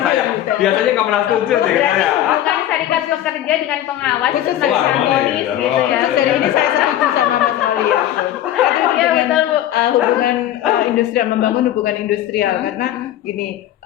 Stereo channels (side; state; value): right; quieter; 12.4 dB